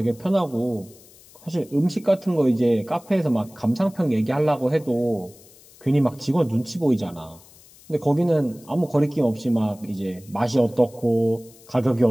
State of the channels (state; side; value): noise; left; hiss, 25 dB below the sound